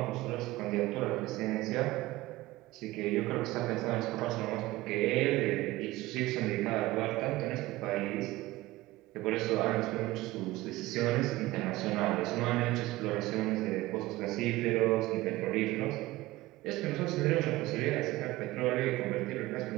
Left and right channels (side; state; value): left; quieter; 18.5 dB